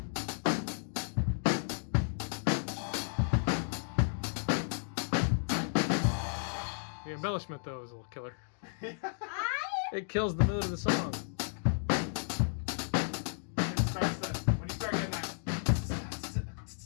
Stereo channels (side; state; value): right; silent; digital silence